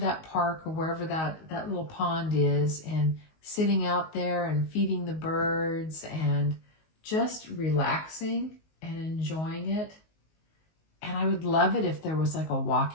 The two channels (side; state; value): right; late; 19 ms